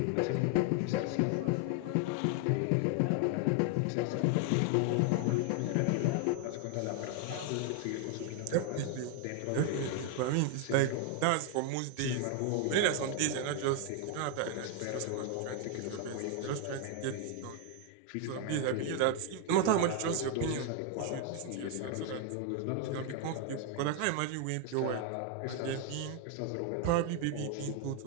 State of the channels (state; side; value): different; both; correlation 0.00